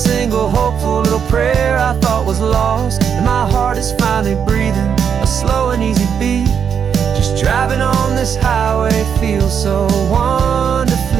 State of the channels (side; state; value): left; quieter; 7.5 dB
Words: hopeful little prayer I thought was lost, and my heart is finally breathing a slow and easy beat. Just driving on this highway feels so